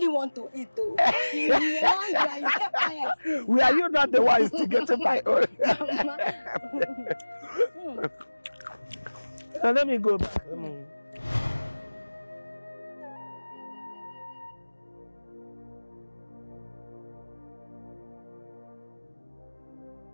want to eat, though? You want Were you not the ones to get my own? Now let me go back.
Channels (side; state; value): both; inverted; correlation -1.00